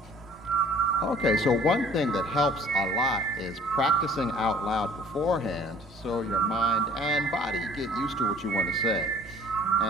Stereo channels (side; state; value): both; normal; correlation 0.52